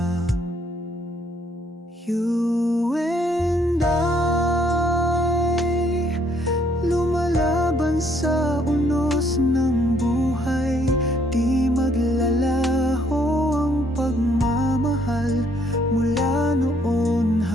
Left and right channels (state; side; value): normal; both; correlation 0.67